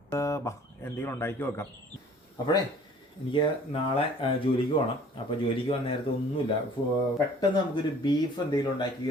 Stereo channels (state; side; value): normal; both; correlation 0.51